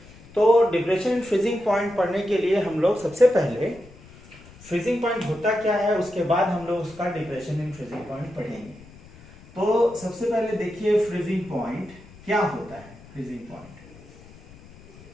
तो डिप्रेशन इन फ्रीजिंग पॉइंट पढ़ने के लिए हम लोग सबसे पहले फ्रीजिंग पॉइंट होता क्या है, उसके बाद हम लोग उसका डिप्रेशन इन फ्रीजिंग पॉइंट पढ़ेंगे। तो सबसे पहले देखिए फ्रीजिंग पॉइंट क्या होता है। फ्रीजिंग पॉइंट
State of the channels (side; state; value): left; noise; rumble, 22 dB below the sound